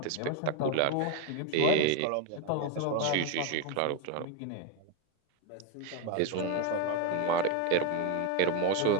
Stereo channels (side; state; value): both; different; correlation 0.02